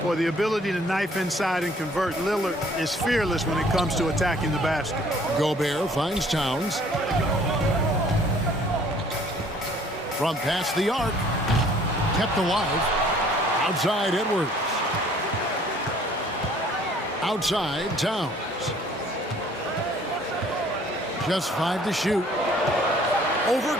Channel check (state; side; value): normal; both; correlation 0.57